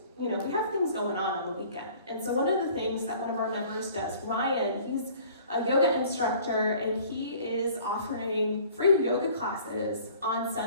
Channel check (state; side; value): inverted; both; correlation -0.51